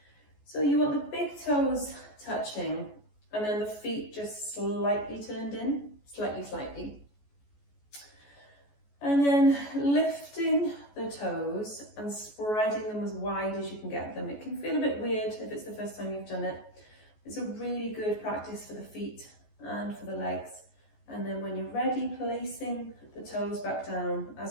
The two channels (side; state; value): right; late; 14 ms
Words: So you want the big toes touching and then the feet just slightly turned in, slightly. And then lifting the toes and spreading them as wide as you can get them. It can feel a bit weird if it's the first time you've done it. It's a really good practice for the feet and for the legs. And then when you're ready, placing the toes back down